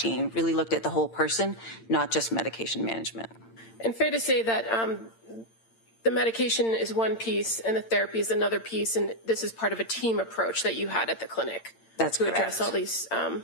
really looked at the whole person, not just medication management. And fair to say that the medication is one piece and the therapy is another piece, and this is part of a team approach that you had at the clinic. That's to correct. Address all these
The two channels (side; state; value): right; late; 8.8 ms